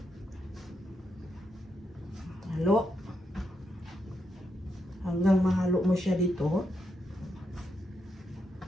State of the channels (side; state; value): both; normal; correlation 0.82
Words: Halo. Hanggang mahalo mo siya dito.